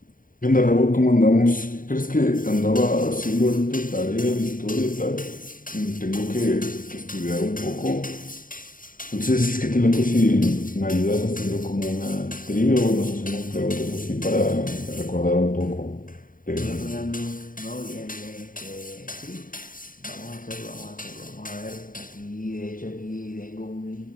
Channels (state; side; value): late; right; 0.40 ms